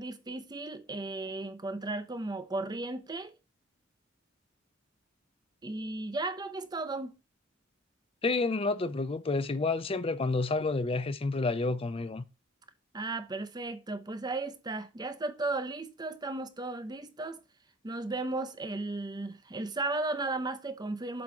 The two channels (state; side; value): normal; both; correlation 0.48